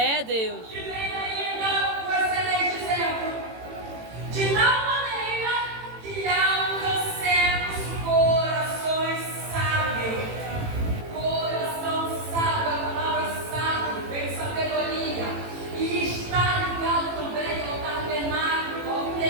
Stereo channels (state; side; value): late; left; 18 ms